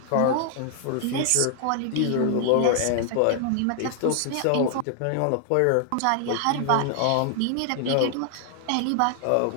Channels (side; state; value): both; different; correlation 0.00